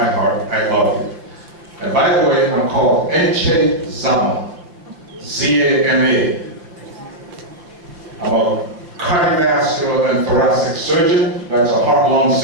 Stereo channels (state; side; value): late; left; 5.9 ms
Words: heart. I love you. And by the way, I'm called Zama, Z-A-M-A. I'm a cardiovascular and thoracic surgeon. That's a heart-lung